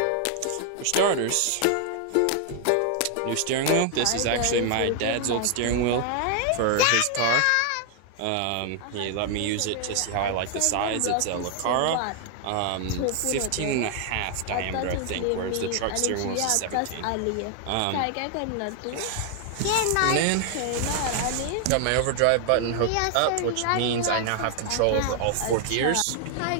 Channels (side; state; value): both; different; correlation 0.00